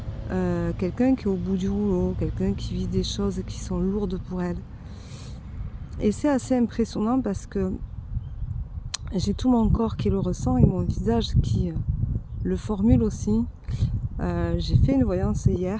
quelqu'un qui est au bout du rouleau, quelqu'un qui vit des choses qui sont lourdes pour elle. Et c'est assez impressionnant parce que j'ai tout mon corps qui le ressent et mon visage qui le formule aussi. J'ai fait une voyance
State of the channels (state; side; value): identical; both; correlation 1.00